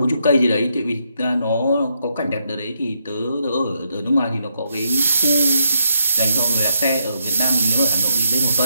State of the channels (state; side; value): inverted; both; correlation -0.79